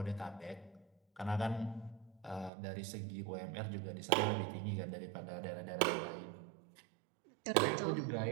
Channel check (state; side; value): drops out; left; at 2.5 s